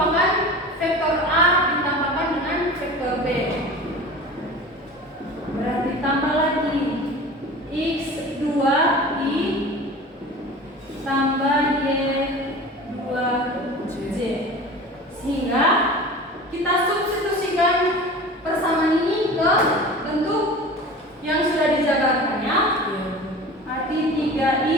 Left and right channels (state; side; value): normal; both; correlation 0.37